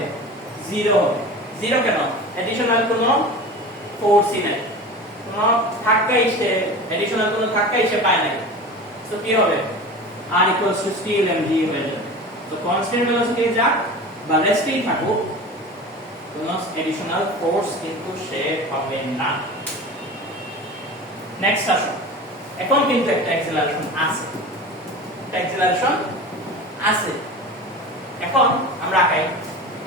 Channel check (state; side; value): normal; both; correlation 0.33